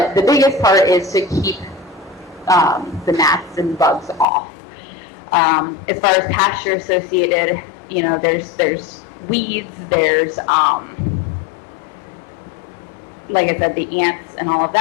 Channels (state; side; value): drops out; right; at 4.2 s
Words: the biggest part is to keep the gnats and bugs off. As far as pasture associated, you know, there's weeds, there's like I said, the ants and all of